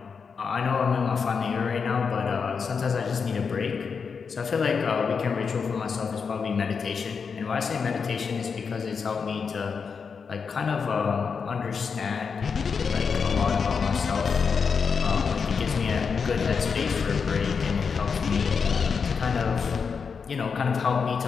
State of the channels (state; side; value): quieter; right; 5.7 dB